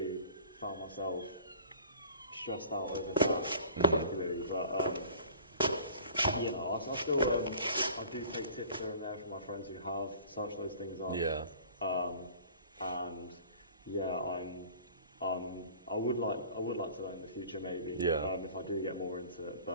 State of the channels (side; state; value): both; inverted; correlation -0.47